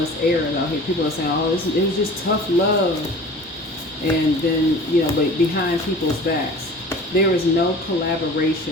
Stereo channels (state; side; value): normal; both; correlation 0.42